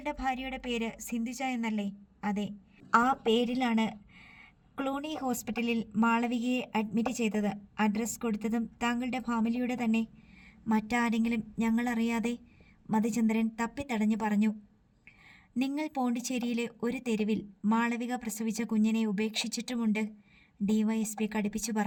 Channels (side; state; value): both; identical; correlation 1.00